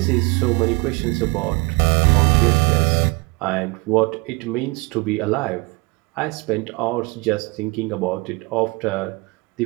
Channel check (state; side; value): quieter; left; 26.8 dB